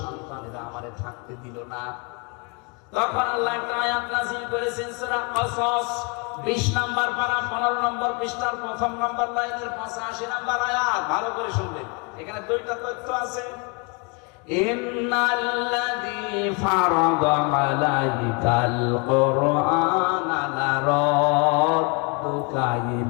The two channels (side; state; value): right; quieter; 32.6 dB